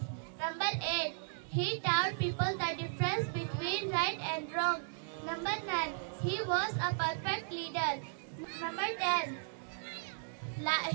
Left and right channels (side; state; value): left; silent; 54 dB below the other